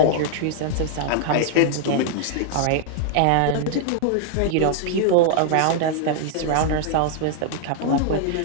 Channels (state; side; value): different; both; correlation -0.01